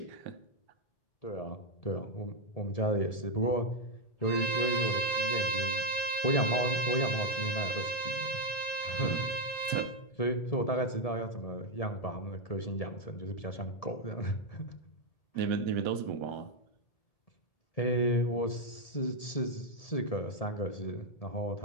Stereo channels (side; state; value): right; late; 1.7 ms